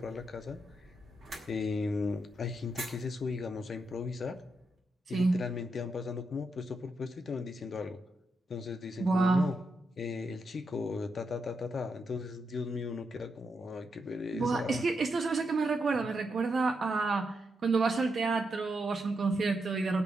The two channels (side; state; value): both; normal; correlation 0.83